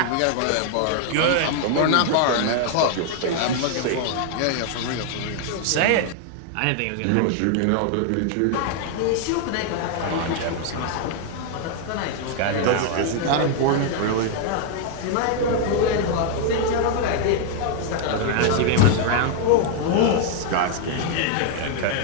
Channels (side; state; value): both; different; correlation 0.00